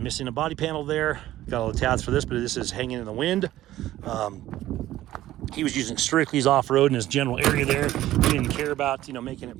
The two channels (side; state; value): left; quieter; 14.4 dB